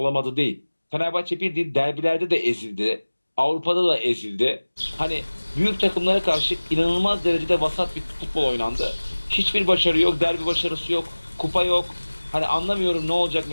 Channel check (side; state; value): both; inverted; correlation -1.00